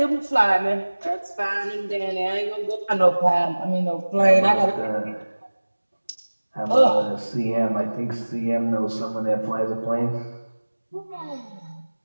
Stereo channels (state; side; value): inverted; both; correlation -1.00